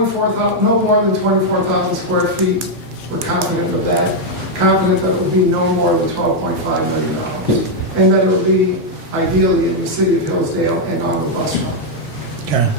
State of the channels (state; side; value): normal; both; correlation -0.01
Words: no more than 24,000 square feet. We're confident of that. Confident that it would be no more than $12.5 million. And that it would be ideally in the city of Hillsdale and on the bus route. Okay,